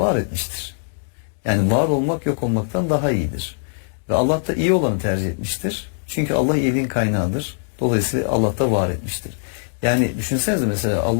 etmiştir. Yani var olmak yok olmaktan daha iyidir. Ve Allah da iyi olanı tercih etmiştir. Çünkü Allah iyiliğin kaynağıdır. Dolayısıyla Allah da var etmiştir. Yani düşünsenize mesela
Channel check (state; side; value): silent; right; 65 dB below the other